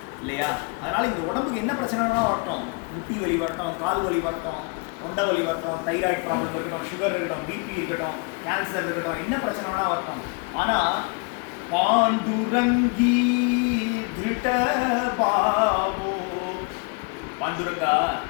இல்லையா? அதனால் இந்த உடம்புக்கு என்ன பிரச்சனைனா வரட்டும், முட்டி வலி வரட்டும், கால் வலி வரட்டும், தொண்டை வலி வரட்டும், தைராய்டு ப்ராப்ளம் இருக்கட்டும், சுகர் இருக்கட்டும், பிபி இருக்கட்டும், கேன்சர் இருக்கட்டும், என்ன பிரச்சனைனா வரட்டும், ஆனால் பாண்டுரங்கி திருட்ட பாவோ பாண்டுரங்கா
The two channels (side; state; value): right; quieter; 32.2 dB